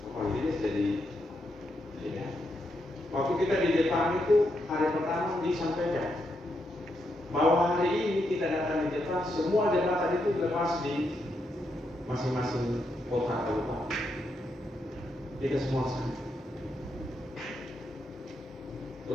oh ini jadi ya. Waktu kita di Jepang itu hari pertama disampaikan bahwa hari ini kita datang di Jepang, semua jembatan itu lepas di masing-masing kota kabupaten. Kita semua sama.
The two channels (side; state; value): both; normal; correlation 0.81